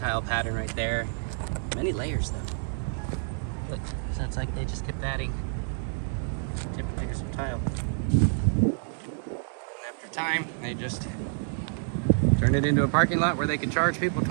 pattern right there. Many layers though. Look, so it's like they just kept adding different layers of tile. And after time, they just turned it into a parking lot where they could charge people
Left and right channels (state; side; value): silent; left; 59 dB below the other